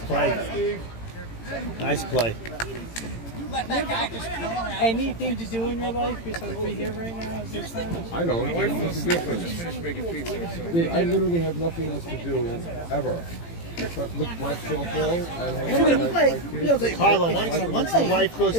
Nice play. Anything to do in your life besides be here right now? Is there something? I don't. What's the difference? Dude, I literally have nothing else to do ever. But look, watch softball and hang out. Carlo, once the wife goes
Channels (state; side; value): late; right; 18 ms